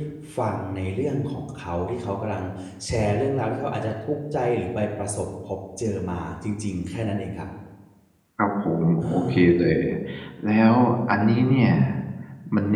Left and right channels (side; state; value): both; identical; correlation 1.00